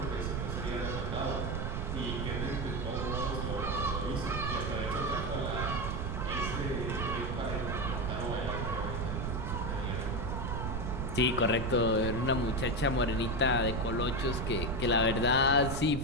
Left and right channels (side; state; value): right; noise; rumble, 1 dB below the sound